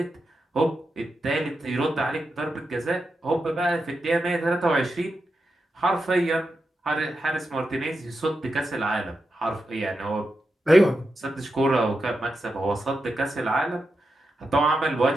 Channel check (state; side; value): normal; both; correlation 0.88